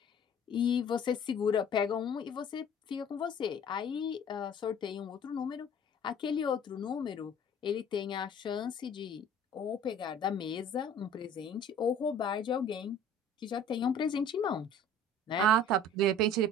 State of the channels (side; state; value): both; normal; correlation 0.48